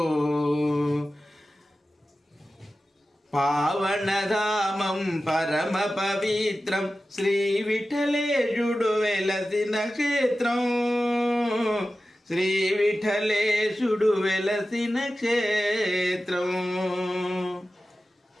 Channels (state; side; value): normal; both; correlation 0.94